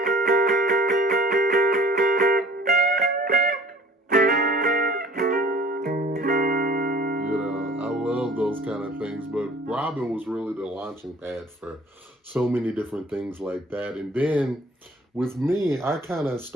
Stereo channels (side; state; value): both; normal; correlation 0.51